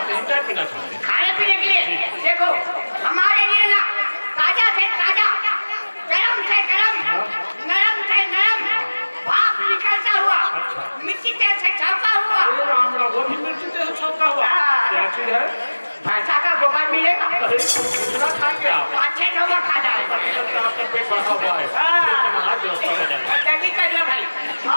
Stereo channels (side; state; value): both; inverted; correlation -1.00